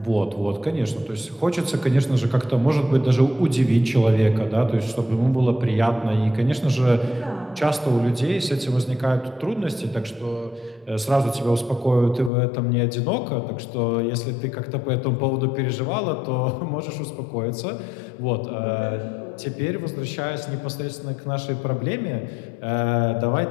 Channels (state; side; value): drops out; right; at 12.3 s